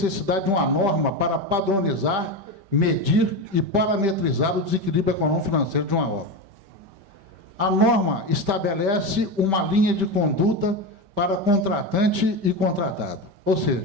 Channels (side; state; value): left; late; 5.1 ms